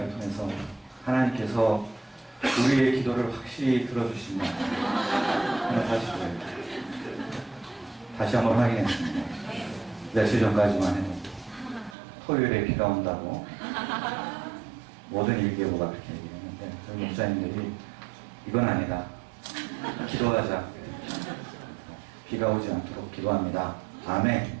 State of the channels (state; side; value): drops out; left; at 12.0 s